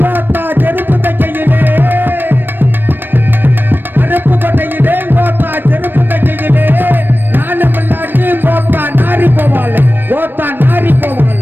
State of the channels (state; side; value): late; left; 0.094 ms